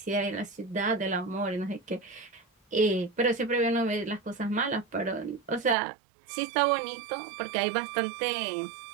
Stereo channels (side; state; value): left; drops out; at 5.8 s